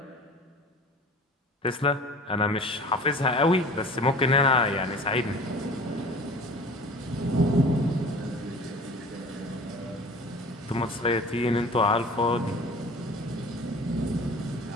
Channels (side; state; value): both; normal; correlation 0.42